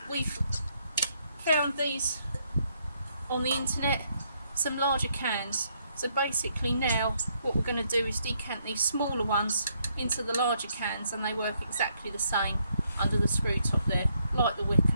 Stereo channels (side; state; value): both; inverted; correlation -0.73